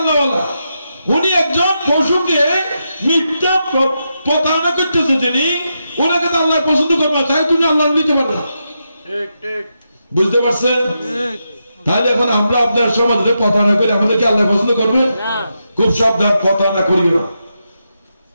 উনি একজন পশুকে মিথ্যা প্রতারণা করতেছে, যিনি ওনাকে তো আল্লাহ পছন্দ করবে না, তাই তুমি আল্লাহ নিতে পারবে না। বুঝতে পারছেন? তাহলে এখন আমরা আপনার সমাজে প্রতারণা করি, আমাদেরকে আল্লাহ পছন্দ করবে? খুব সাবধান, প্রতারণা করিও না,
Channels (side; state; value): both; inverted; correlation -0.85